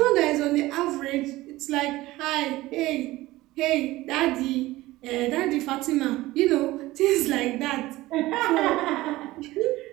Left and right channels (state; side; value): quieter; left; 18.1 dB